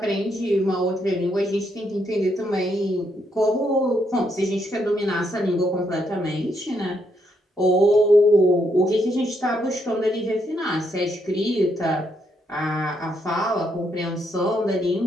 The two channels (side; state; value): both; normal; correlation 0.76